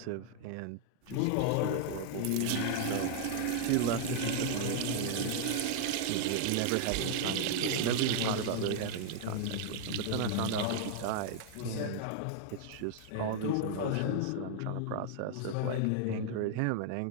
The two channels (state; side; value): different; both; correlation -0.01